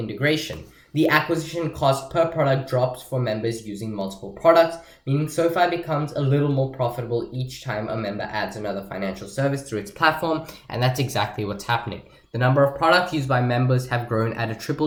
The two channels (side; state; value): both; identical; correlation 1.00